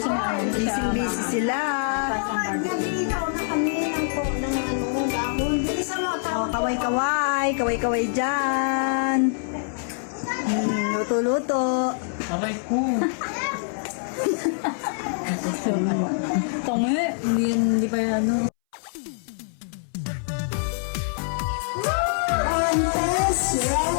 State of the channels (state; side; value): silent; right; 62 dB below the other